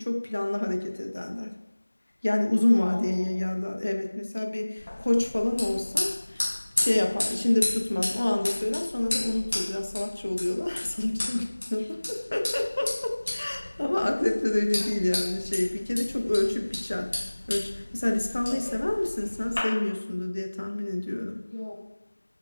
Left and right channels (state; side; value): inverted; both; correlation -1.00